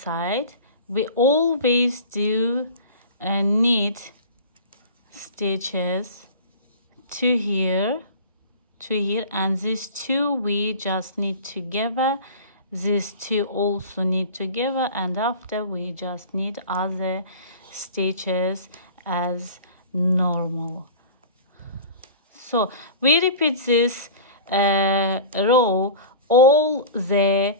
we always do knit stitches to here, and these 2 we just knit together these two also knit together, and after we just knit other stitches as normal. So we repeat this row all the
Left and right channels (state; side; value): inverted; both; correlation -0.37